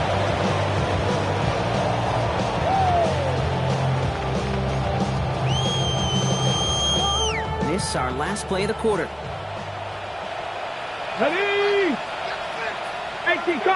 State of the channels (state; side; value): identical; both; correlation 1.00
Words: This is our last play of the quarter. Ready. 18